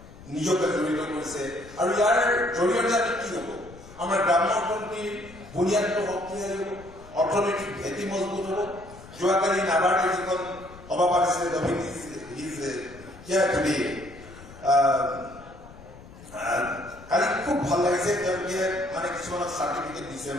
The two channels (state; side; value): noise; left; rumble, 19 dB below the sound